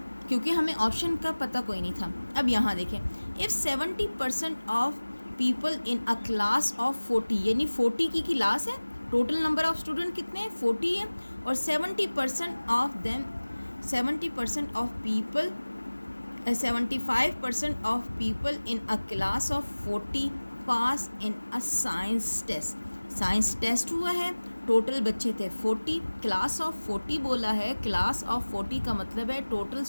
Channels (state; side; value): inverted; both; correlation -1.00